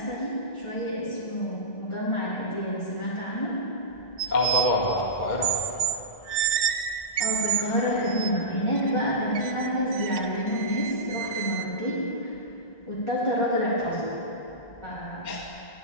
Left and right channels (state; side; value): late; right; 1.1 ms